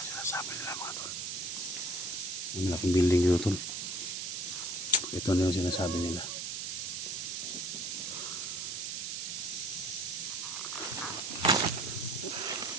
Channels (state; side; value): noise; right; hiss, 3 dB below the sound